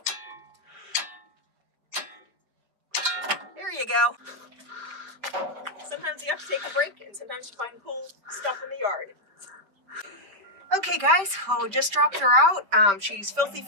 There you go. Sometimes you have to take a break and sometimes you find cool stuff in the yard. Okay guys, well, we just dropped her out. She's filthy,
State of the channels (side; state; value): left; late; 4.6 ms